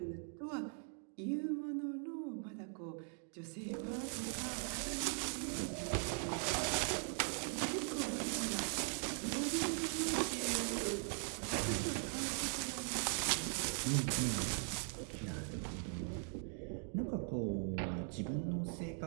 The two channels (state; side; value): silent; left; 51 dB below the other